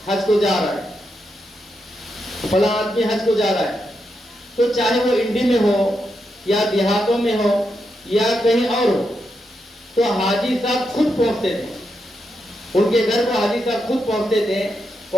حج کو جا رہا ہے، فلاں آدمی حج کو جا رہا ہے، تو چاہے وہ انڈی میں ہو یا دیہاتوں میں ہو یا کہیں اور ہو، تو حاجی صاحب خود پہنچتے تھے ان کے گھر کو. حاجی صاحب خود پہنچتے تھے،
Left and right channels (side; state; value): both; normal; correlation 0.84